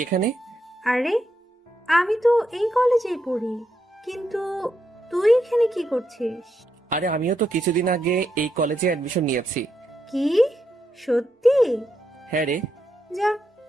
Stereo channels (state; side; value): normal; both; correlation 0.81